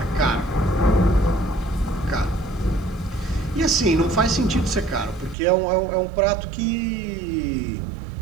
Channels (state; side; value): drops out; left; at 5.4 s